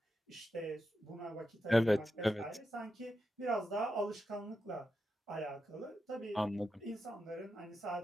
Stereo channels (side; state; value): both; normal; correlation 0.88